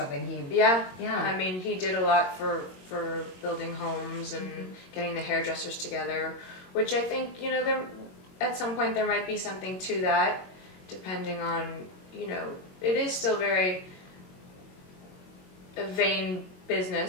he... Yeah. I mean, he did a lot for building homes and getting the hairdressers together, which I think, there at some point there might be something to that, depending on, it is still very a vain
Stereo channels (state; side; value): late; right; 22 ms